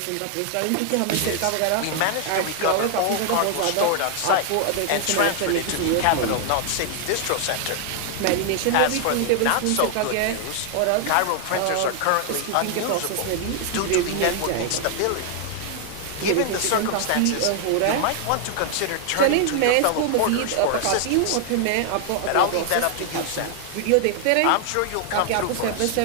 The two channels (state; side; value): different; both; correlation 0.00